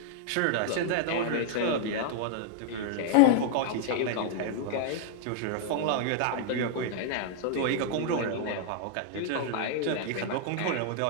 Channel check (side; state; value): both; different; correlation -0.01